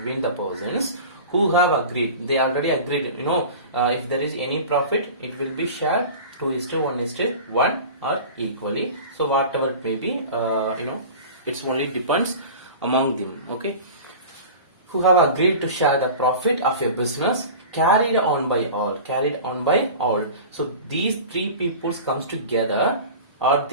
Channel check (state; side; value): inverted; both; correlation -0.36